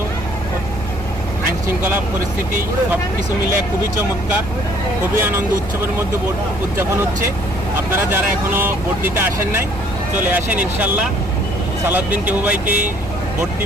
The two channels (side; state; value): both; normal; correlation 0.60